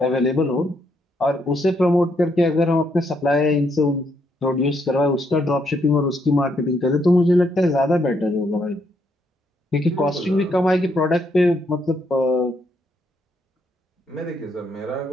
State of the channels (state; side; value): normal; both; correlation 0.75